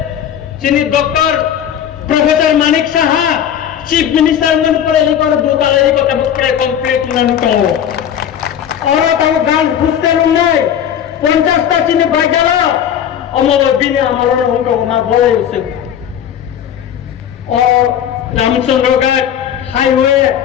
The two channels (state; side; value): quieter; right; 9.5 dB